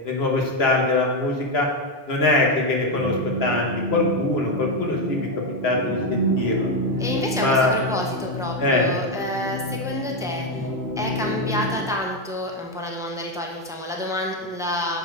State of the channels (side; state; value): both; normal; correlation 0.06